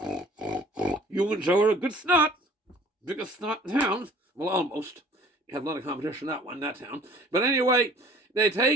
You and Joe are a good snot. Biggest snot in town. Well, almost. You have a lot of competition in that town. But anyway, they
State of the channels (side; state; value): both; normal; correlation 0.51